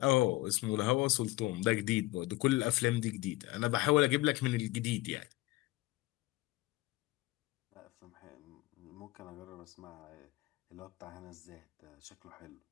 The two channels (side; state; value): right; quieter; 19.9 dB